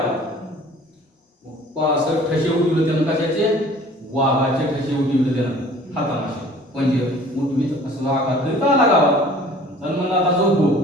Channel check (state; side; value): normal; both; correlation 0.49